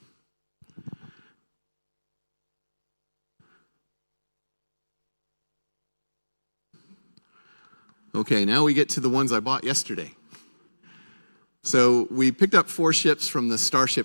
Okay, now we get to the ones I bought yesterday. So we picked up 4 ships from the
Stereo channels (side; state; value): both; inverted; correlation -1.00